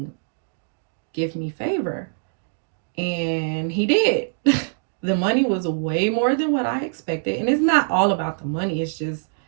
give me favor. And he did. The money was way more than what I expected. And it's not all about the money. It's just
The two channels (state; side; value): silent; left; digital silence